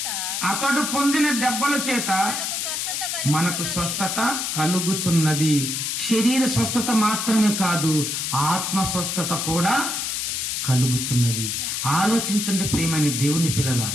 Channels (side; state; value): left; noise; hiss, 2 dB below the sound